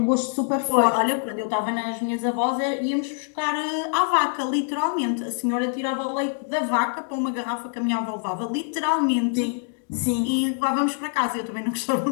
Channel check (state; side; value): silent; right; 62 dB below the other